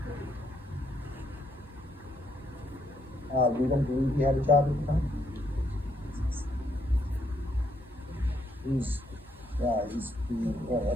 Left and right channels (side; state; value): both; normal; correlation 0.73